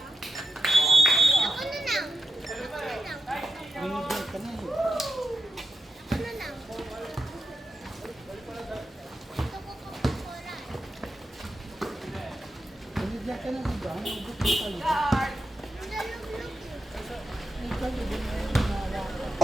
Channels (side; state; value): both; normal; correlation 0.87